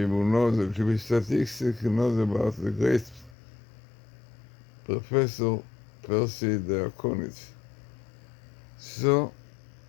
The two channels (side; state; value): right; drops out; at 3.4 s